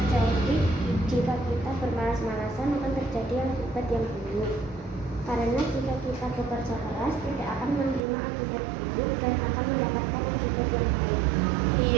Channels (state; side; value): drops out; left; at 8.0 s